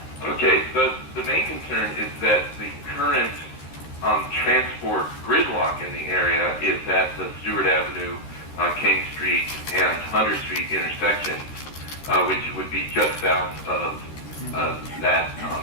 Okay, the main concern is that the current transport gridlock in the area is at the Stewart Avenue, King Street, and Hunter Street intersection, which would be just south of that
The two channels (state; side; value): late; right; 13 ms